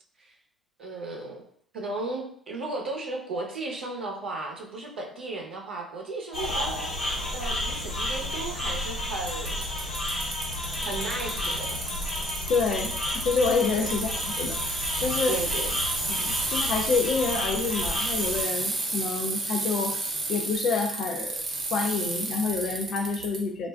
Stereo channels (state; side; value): normal; both; correlation 0.60